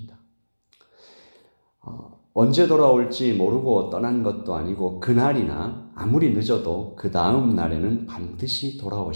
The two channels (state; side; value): inverted; both; correlation -1.00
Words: 언제 돌아올지 모르고 떠난 것도 아니고 그날이나 아무리 늦어도 그 다음 날에는 반드시